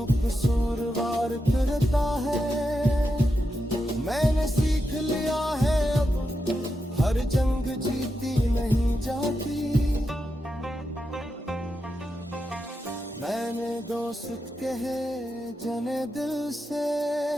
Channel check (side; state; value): both; normal; correlation 0.87